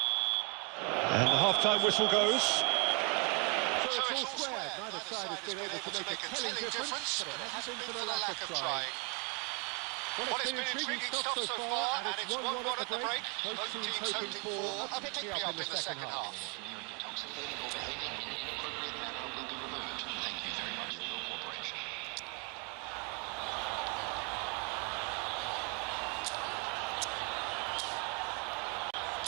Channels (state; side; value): quieter; left; 34.9 dB